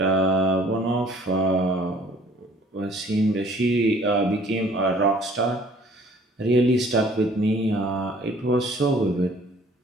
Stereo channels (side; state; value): both; normal; correlation 0.54